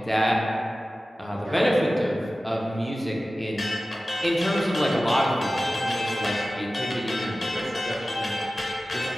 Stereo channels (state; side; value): normal; both; correlation 0.96